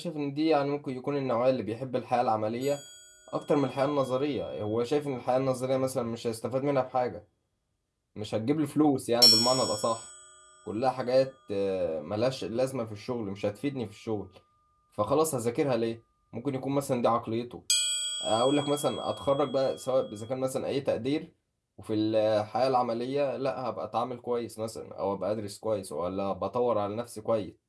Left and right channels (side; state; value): both; identical; correlation 1.00